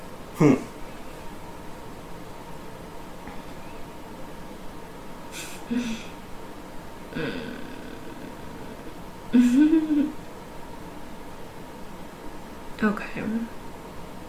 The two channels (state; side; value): identical; both; correlation 1.00